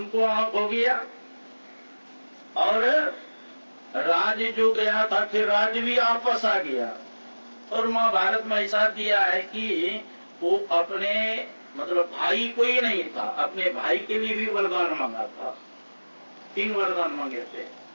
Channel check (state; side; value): inverted; both; correlation -1.00